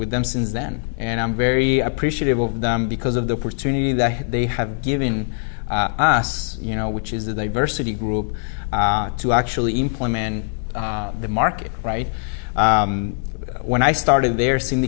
them since then. And I'm very appreciative of them because of the opportunity that they have given us, which is the diversity group, to actually implement the market, right? When I started there, Cindy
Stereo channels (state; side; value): silent; right; digital silence